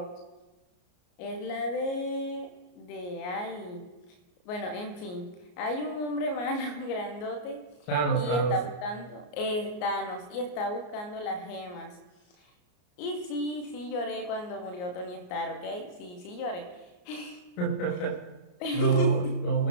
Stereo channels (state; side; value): late; right; 34 ms